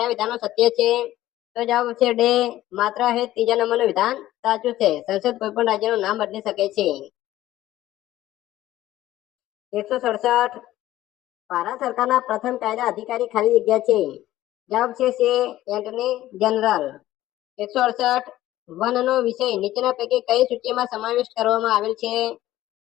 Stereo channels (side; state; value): right; quieter; 14.7 dB